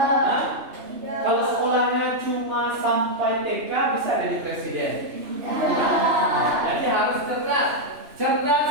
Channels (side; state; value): left; late; 3.0 ms